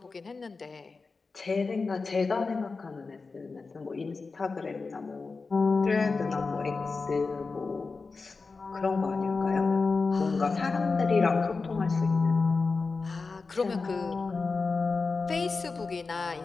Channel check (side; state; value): right; quieter; 4.2 dB